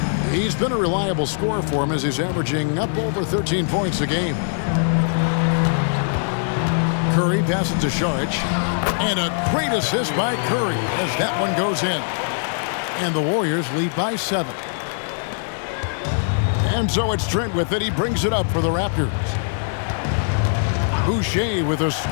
He's been a reliable scorer for him as he's averaging up over 13 points a game. Curry passes to Šarić, and a great assist by Curry as that one goes in. And the Warriors lead by 7. And so it's Trent with it. He brings it up for the Raptors. Boucher with a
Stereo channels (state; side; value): silent; right; 65 dB below the other